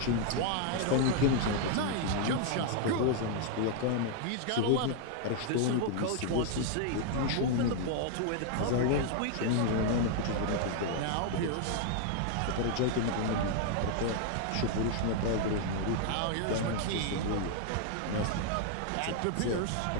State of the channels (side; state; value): both; different; correlation 0.00